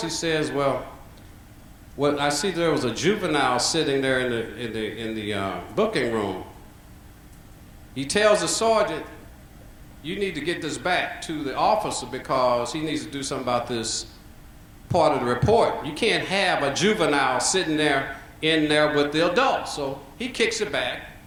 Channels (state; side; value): identical; both; correlation 1.00